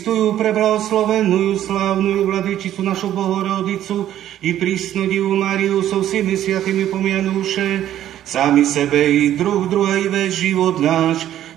preblahoslavenú, slávnu Vladyčicu našu Bohorodicu i prísnu Divu Máriu so všemi sviatými pomianúše, sami sebe i druhej vec život náš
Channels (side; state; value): left; quieter; 11.9 dB